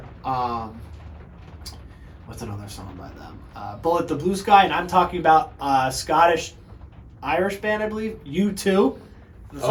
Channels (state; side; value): identical; both; correlation 1.00